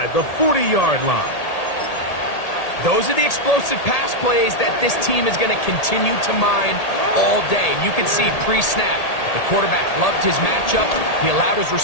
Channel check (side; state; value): right; late; 1.8 ms